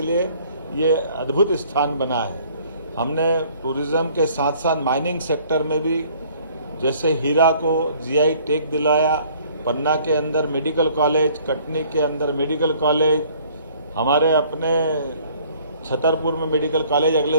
लिए ये अद्भुत स्थान बना है। हमने टूरिज्म के साथ साथ माइनिंग सेक्टर में भी, जैसे हीरा को जीआई टैग दिलाया, पन्ना के अंदर मेडिकल कॉलेज, कटनी के अंदर मेडिकल कॉलेज, हमारे अपने छतरपुर में मेडिकल कॉलेज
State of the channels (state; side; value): inverted; both; correlation -0.57